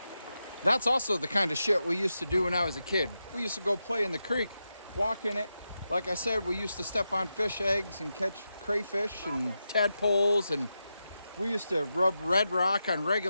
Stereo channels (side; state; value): both; inverted; correlation -0.88